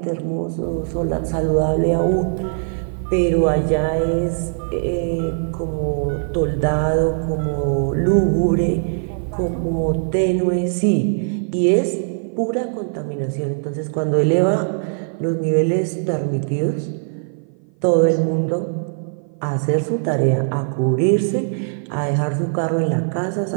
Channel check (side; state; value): left; silent; 56 dB below the other